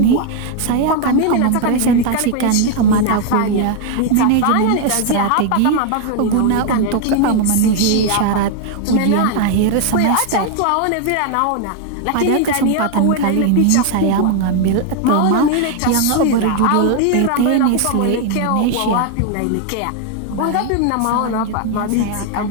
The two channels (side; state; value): both; different; correlation 0.00